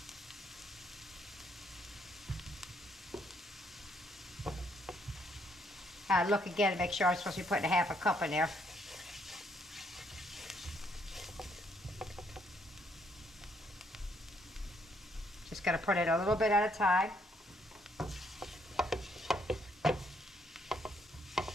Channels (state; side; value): normal; both; correlation 0.71